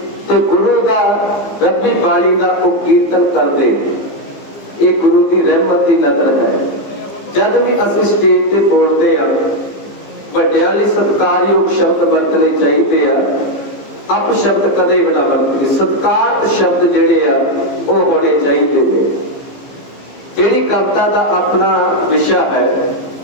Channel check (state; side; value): late; right; 15 ms